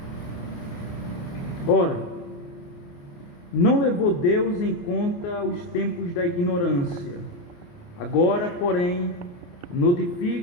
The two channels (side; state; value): right; late; 28 ms